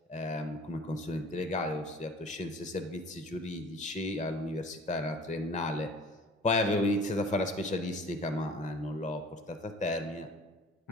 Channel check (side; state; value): both; normal; correlation 0.47